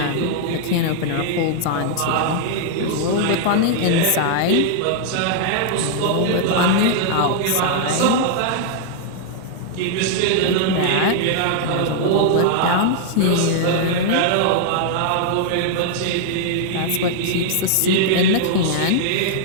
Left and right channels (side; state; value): both; different; correlation -0.01